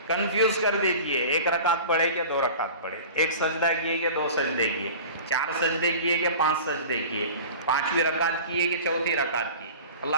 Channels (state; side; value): inverted; both; correlation -0.38